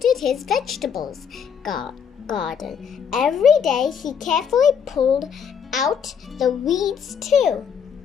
his vegetables garden. Every day he carefully pulled out the weeds too.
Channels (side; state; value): right; quieter; 7.3 dB